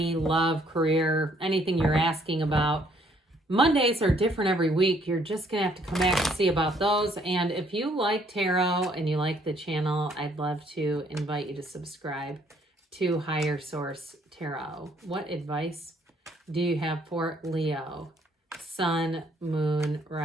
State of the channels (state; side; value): normal; both; correlation 0.65